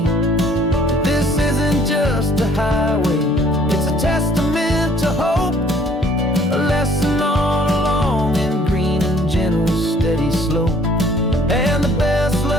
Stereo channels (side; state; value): both; normal; correlation 0.58